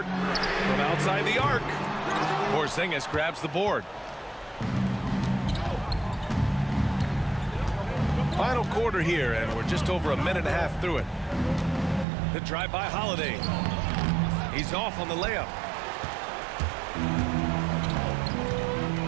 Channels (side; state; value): left; drops out; at 12.1 s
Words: From outside the arc. Porzingis grabs the board. Final quarter here, and we're just over a minute and a half through it. The drive by Holiday. He's off on the layup.